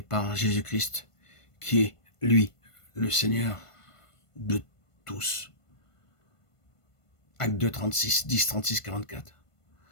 Jésus-Christ, qui est, lui, le Seigneur de tous. Acte 2, 36, 10, 36, 44.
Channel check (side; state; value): right; late; 1.5 ms